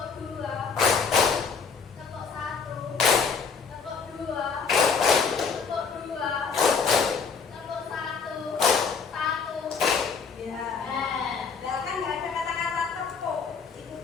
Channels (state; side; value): quieter; right; 5.6 dB